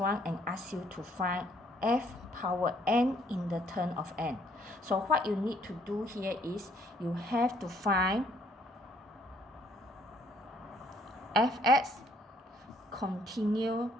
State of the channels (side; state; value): both; normal; correlation 0.65